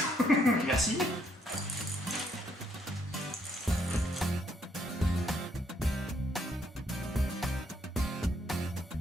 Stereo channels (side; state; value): both; normal; correlation 0.71